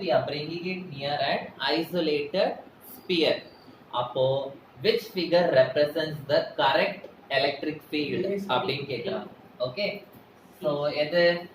we are bringing it near an isolated sphere. அப்போ which figure represents the correct electric field அப்படினு கேக்குறாங்க. ஓகே, சோ எது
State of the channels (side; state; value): both; identical; correlation 1.00